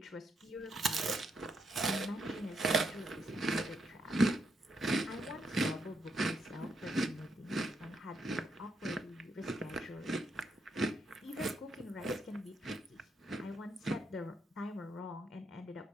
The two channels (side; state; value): both; normal; correlation 0.78